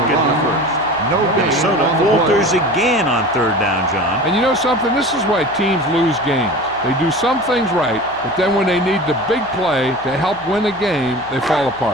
get the first. No gain Minnesota on the falters play. again on third down, John. And you know something? This is why teams lose games. They do some things right, but then when they need the big play to help win a game, they fall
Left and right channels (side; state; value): right; noise; hum, 22 dB below the sound